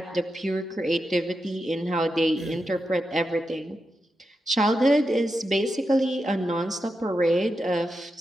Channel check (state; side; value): normal; both; correlation 0.88